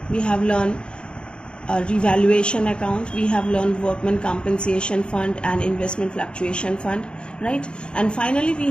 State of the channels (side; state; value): right; late; 0.054 ms